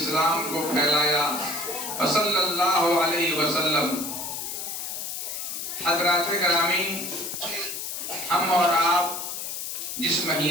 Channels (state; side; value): noise; left; hiss, 5 dB below the sound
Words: کو پھیلایا، صلی اللہ علیہ وسلم. حضرات گرامی، ہم اور آپ جس